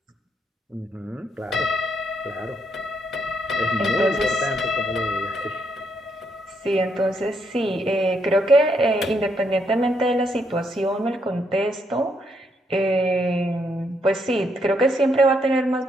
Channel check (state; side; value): normal; both; correlation 0.76